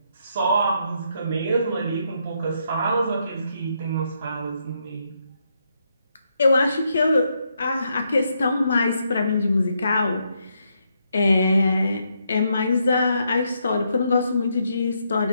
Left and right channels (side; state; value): both; inverted; correlation -0.78